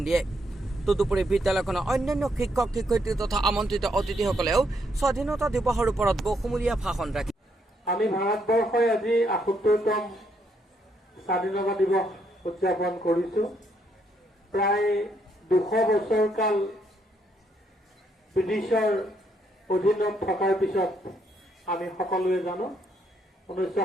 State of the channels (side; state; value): both; normal; correlation 0.74